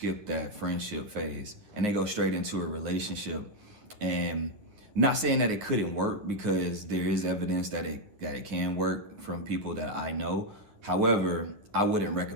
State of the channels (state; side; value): late; left; 9.9 ms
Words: that friendship phase and they go straight into a relationship. And not saying that it couldn't work, because there is evidence that it can work from people that I know. However, I wouldn't